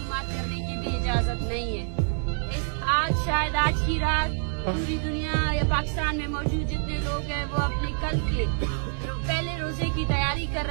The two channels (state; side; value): silent; left; 59 dB below the other